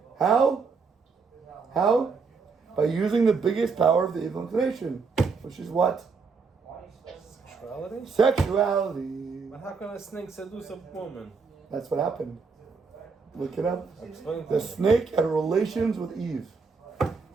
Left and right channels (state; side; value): quieter; left; 4.9 dB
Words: How? By using the biggest power of the evil inclination, which is what? Sexuality? Sexuality. But how can a snake seduce a woman? That's what happened. Look it up. Explain The snake had relations with Eve.